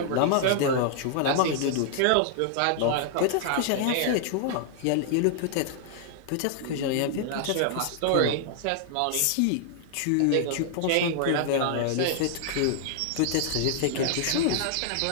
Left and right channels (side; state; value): both; different; correlation -0.01